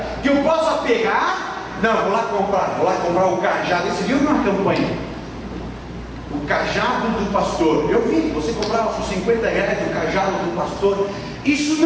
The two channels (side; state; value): both; identical; correlation 1.00